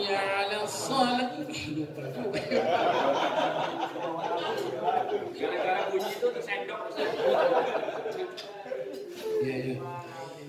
على الصلاة. Gara-gara bunyi itu tersendok. Ya, ya.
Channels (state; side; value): identical; both; correlation 1.00